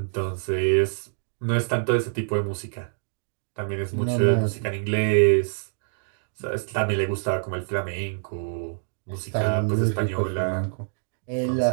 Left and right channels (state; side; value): silent; left; digital silence